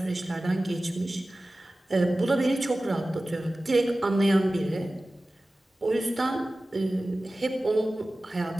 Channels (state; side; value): normal; both; correlation 0.96